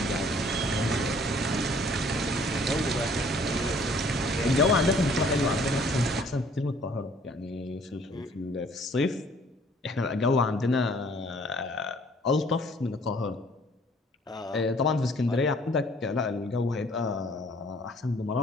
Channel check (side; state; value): both; normal; correlation 0.58